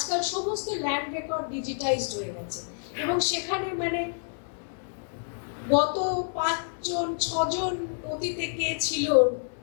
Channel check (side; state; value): right; silent; digital silence